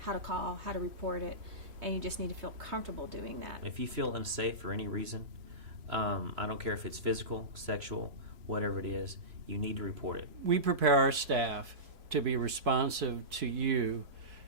how to call, how to report it, and you just need to feel comfortable doing that. If you feel unsafe for any reason, I don't care if it's physical, sexual, whatever it is, you need to report it. We prepare our staff to be responsive to you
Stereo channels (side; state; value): left; late; 3.0 ms